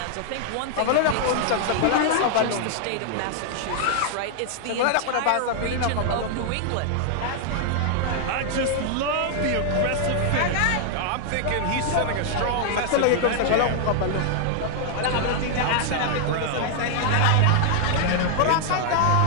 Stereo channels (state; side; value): different; both; correlation 0.00